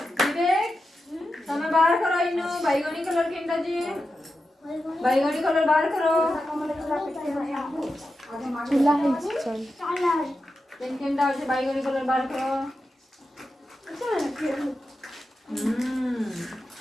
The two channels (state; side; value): normal; both; correlation 0.90